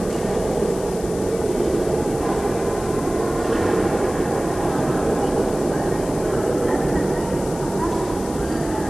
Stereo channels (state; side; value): noise; left; hiss, 15 dB below the sound